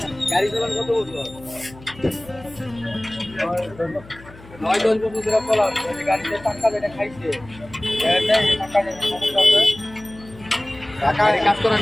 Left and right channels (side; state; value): left; noise; hum, 20 dB below the sound